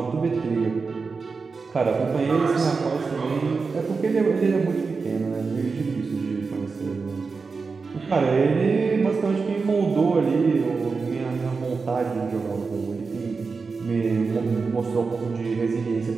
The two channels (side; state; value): left; quieter; 4.6 dB